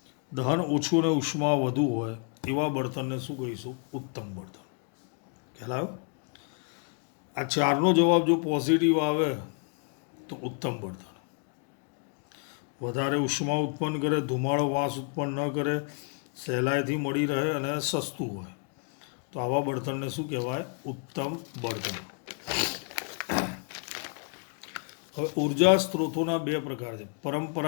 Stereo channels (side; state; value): right; quieter; 39.0 dB